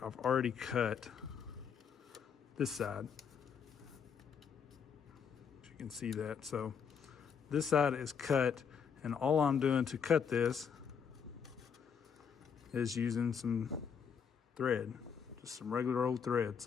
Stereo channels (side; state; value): right; quieter; 6.9 dB